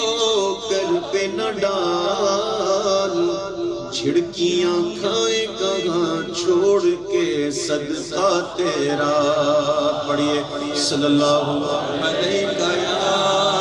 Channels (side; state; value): left; noise; hum, 29 dB below the sound